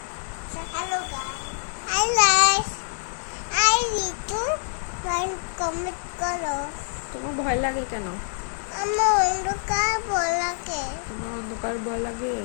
Hello guys. Hi guys. I need to learn comment করো। তোমার ভয় লাগে কেন? আমার অন্ধকার ভয় লাগে। তোমার অন্ধকার ভয় লাগে?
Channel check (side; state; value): right; silent; digital silence